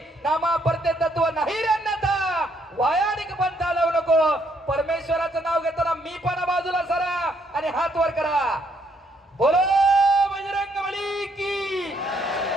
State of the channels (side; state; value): both; normal; correlation 0.71